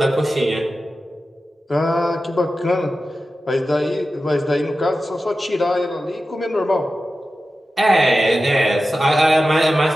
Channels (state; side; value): normal; both; correlation 0.93